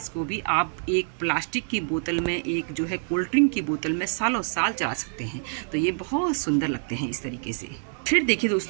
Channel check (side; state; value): left; silent; 61 dB below the other